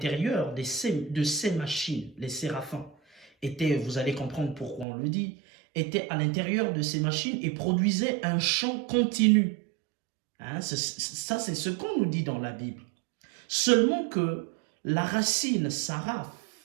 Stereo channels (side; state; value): left; drops out; at 4.9 s